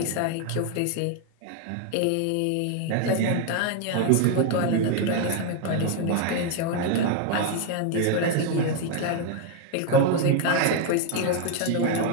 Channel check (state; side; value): different; both; correlation 0.01